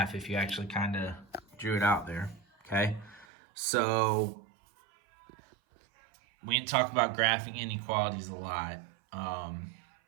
if you actually kind of drew it out there, okay? So we didn't talk about graphing inequalities a lot. I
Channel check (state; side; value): drops out; left; at 3.2 s